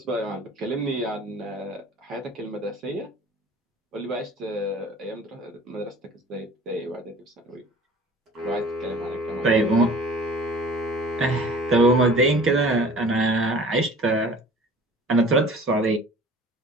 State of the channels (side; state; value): both; normal; correlation 0.46